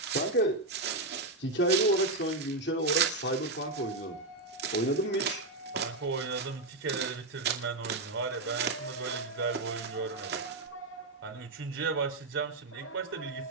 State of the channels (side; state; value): left; quieter; 3.0 dB